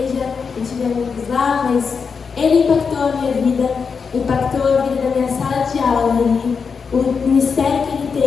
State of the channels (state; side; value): quieter; right; 5.7 dB